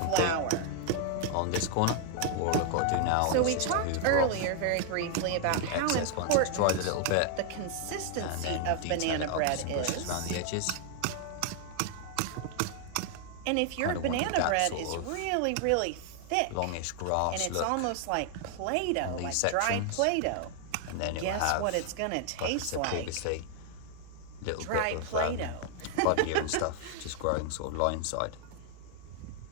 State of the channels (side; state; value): both; different; correlation 0.00